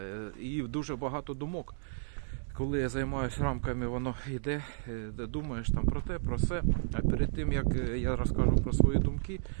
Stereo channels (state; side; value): silent; left; digital silence